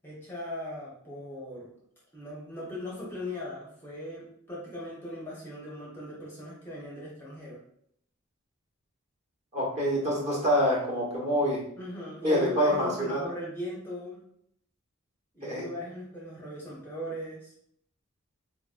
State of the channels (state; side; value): normal; both; correlation 0.18